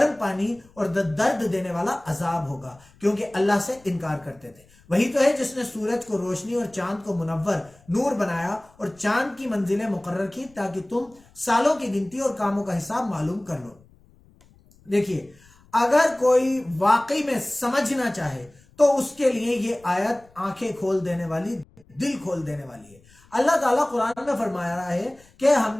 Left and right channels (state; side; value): noise; left; rumble, 28 dB below the sound